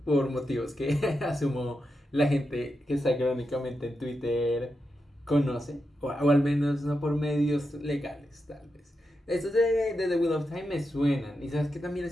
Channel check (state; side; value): normal; both; correlation 0.87